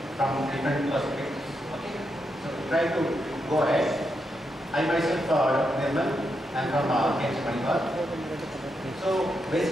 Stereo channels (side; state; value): both; normal; correlation 0.83